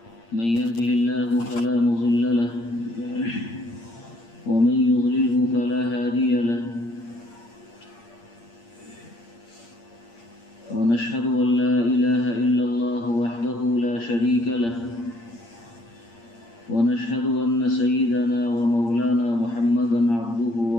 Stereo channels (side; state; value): right; late; 8.6 ms